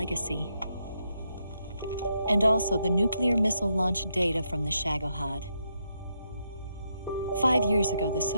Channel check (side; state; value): both; inverted; correlation -0.80